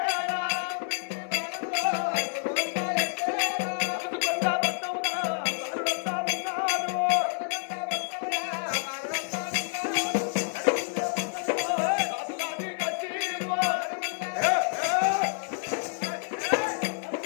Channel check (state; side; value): silent; right; digital silence